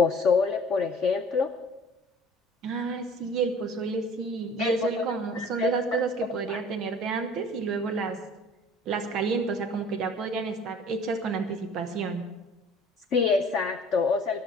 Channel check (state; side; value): normal; both; correlation 0.49